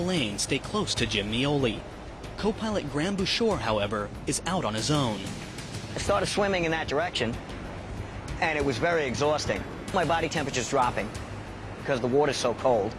stay close to Jim Mioli. Co-pilot Graham Bouchard, however, is out on his own. I started swimming in that direction, and it was very exhausting. My body temperature's dropping because the water's so cold.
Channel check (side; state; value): both; identical; correlation 1.00